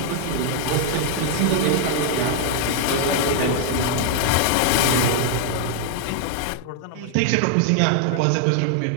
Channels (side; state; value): both; different; correlation 0.00